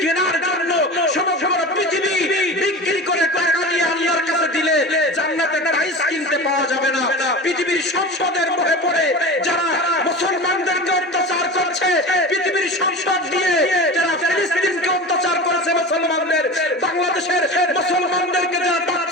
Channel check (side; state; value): both; normal; correlation 0.31